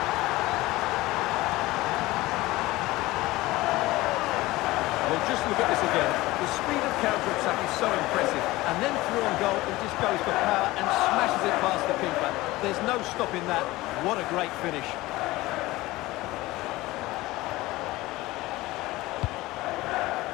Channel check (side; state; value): right; quieter; 19.1 dB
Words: Just look at this again. The speed of counter-attack is so impressive. And then through on goal, he just goes for power and smashes it past the keeper. There's no stopping that. What a great finish.